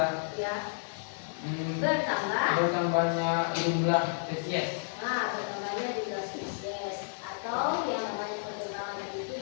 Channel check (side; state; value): right; silent; 57 dB below the other